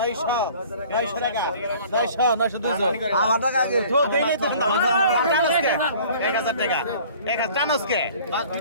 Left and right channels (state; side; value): inverted; both; correlation -0.49